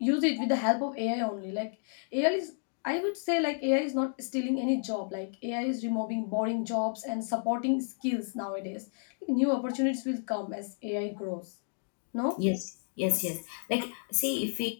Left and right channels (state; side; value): silent; right; digital silence